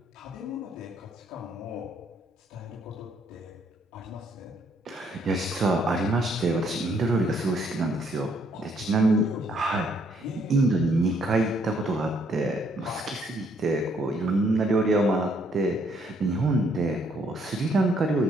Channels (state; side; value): normal; both; correlation 0.68